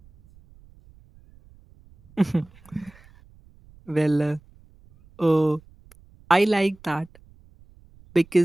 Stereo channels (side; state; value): right; noise; rumble, 27 dB below the sound